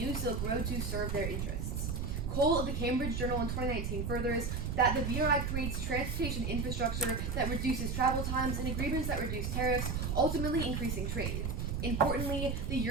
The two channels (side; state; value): right; noise; rumble, 2 dB below the sound